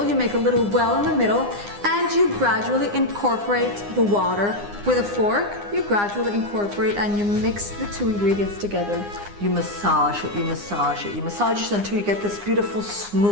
you make a little well in the middle, and you gradually incorporate the water. With a fork, you gradually incorporate and you mix the 2 ingredients together. You massage it, you massage it, you massage it until you get this beautiful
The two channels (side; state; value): left; late; 9.8 ms